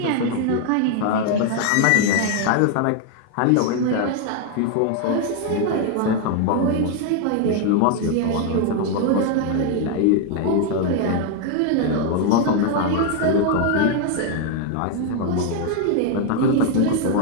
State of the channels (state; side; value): different; both; correlation 0.00